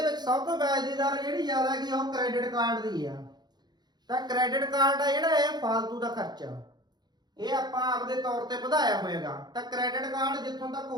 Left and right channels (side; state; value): left; late; 0.20 ms